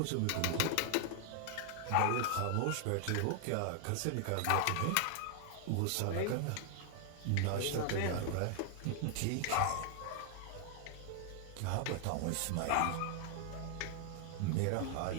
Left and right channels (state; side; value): different; both; correlation 0.00